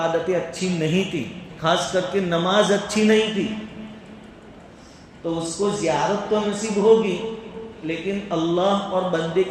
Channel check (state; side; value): identical; both; correlation 1.00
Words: اچھی نہیں تھی، خاص کر کے نماز اچھی نہیں تھی، تو اس کو زیارت تو نصیب ہوگی، لیکن اللہ اور بندے